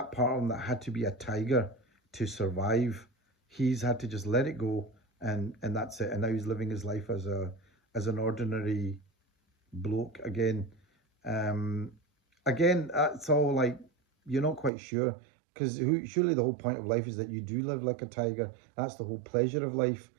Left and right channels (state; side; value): drops out; left; at 14.7 s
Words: part of him that had to be a tiger to survive, he's had to just let it go, and that's it. And now he's living his life as an ordinary bloke again. Um, Again, that's all like you're not quite sure, because surely the whole point of life is that you do live like a tiger. That's the whole pleasure of life.